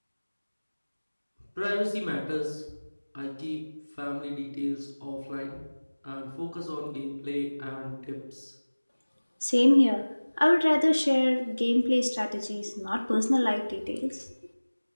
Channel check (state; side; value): inverted; both; correlation -1.00